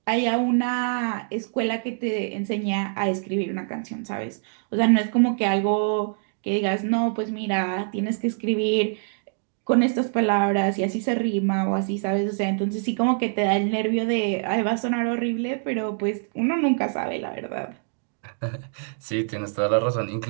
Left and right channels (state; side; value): silent; left; digital silence